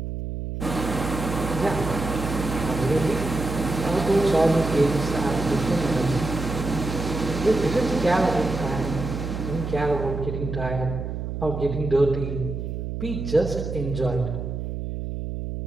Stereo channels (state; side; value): noise; right; hum, 5 dB below the sound